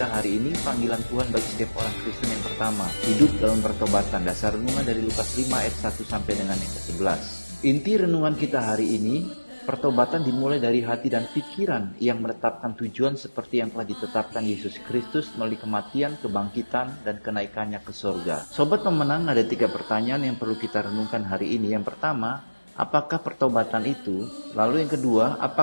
hari ini panggilan Tuhan bagi setiap orang Kristen yang pertama, hidup dalam pertobatan. Dasar renungan dari Lukas 5 ayat 1 sampai dengan yang ke-11. Inti renungan kita hari ini, pertobatan dimulai dari hati dan pikiran yang menetapkan tujuan seperti yang telah ditetapkan Yesus Kristus melalui kematian, kebangkitan, dan kenaikannya ke surga. Sobat Pemenang, ada 3 pertanyaan yang perlu kita renungkan hari ini. Yang pertama, apakah pertobatan itu? Lalu yang kedua,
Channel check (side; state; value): both; inverted; correlation -1.00